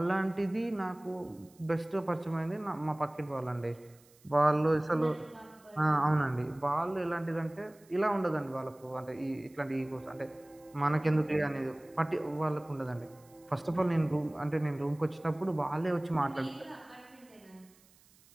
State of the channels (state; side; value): noise; right; hiss, 29 dB below the sound